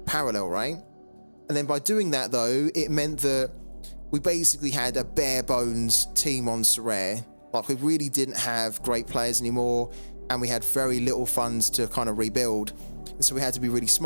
Parallel, right? And then by doing that though, it meant that we basically had a bare bones team on Sorare. Like, we really didn't have great players anymore, and we had very little funds to kind of rebuild. And so we had to be really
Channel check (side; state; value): both; inverted; correlation -1.00